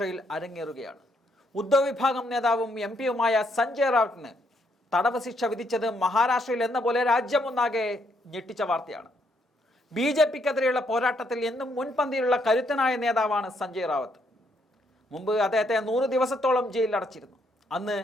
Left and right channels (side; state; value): both; normal; correlation 0.73